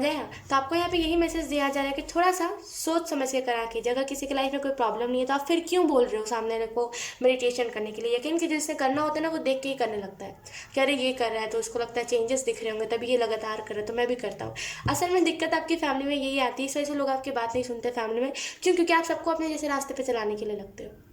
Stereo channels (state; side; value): identical; both; correlation 1.00